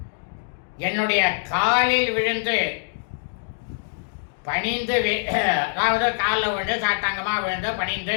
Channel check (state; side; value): silent; right; digital silence